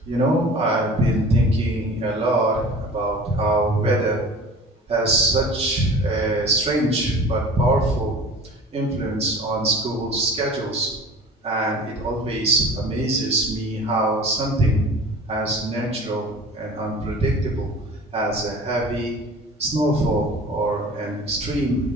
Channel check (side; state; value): both; normal; correlation 0.41